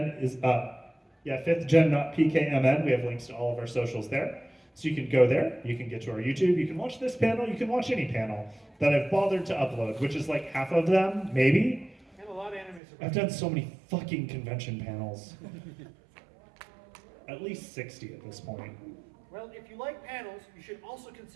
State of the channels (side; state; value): left; drops out; at 12.8 s